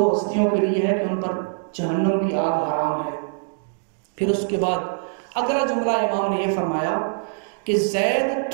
ہستیوں کے لیے ہے کہ ان پر جہنم کی آگ حرام ہے. پھر اس کے بعد اگلا جملہ امام نے یہ فرمایا کہ زید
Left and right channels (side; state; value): left; silent; digital silence